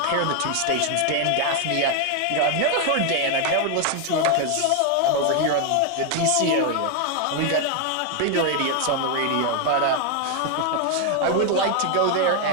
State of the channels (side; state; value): both; different; correlation 0.00